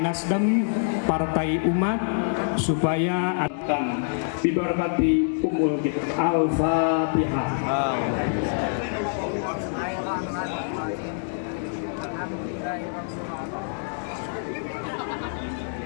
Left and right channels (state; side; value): silent; right; digital silence